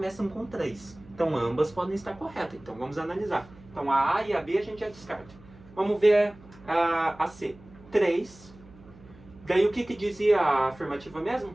com 3. Então ambas podem estar corretas. Então vamos analisar. Então a A e a B a gente já descarta. Vamos ver a C. 3. Daí o que dizia a afirmativa mesmo?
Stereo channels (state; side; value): noise; right; hum, 22 dB below the sound